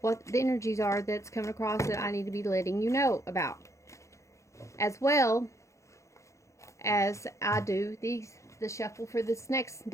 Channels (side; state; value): right; late; 0.15 ms